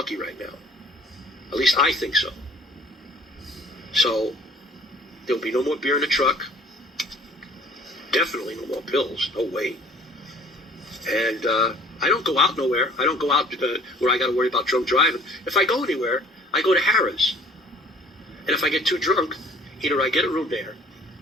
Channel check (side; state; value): both; normal; correlation 0.53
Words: right now. At least I think so. So there'll be no more beer in the truck. Definitely no more pills. No way. And I don't go out nowhere. I don't go out where I got to worry about drunk driving. If I go anywhere, I go to Harrah's. And if I get too drunk, either I get a room there,